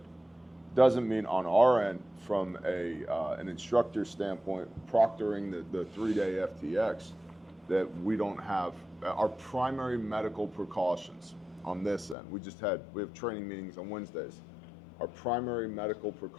Doesn't mean on our end, from an instructor standpoint, proctoring the 3-day FTX, that we don't have. Our primary medical precautions on this end, we have training meetings on Wednesdays. Our primary medical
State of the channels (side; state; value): right; drops out; at 12.2 s